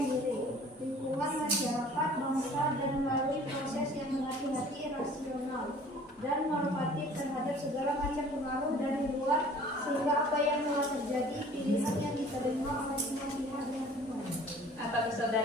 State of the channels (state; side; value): normal; both; correlation 0.50